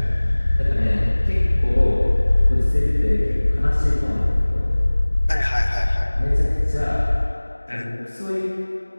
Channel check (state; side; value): inverted; both; correlation -1.00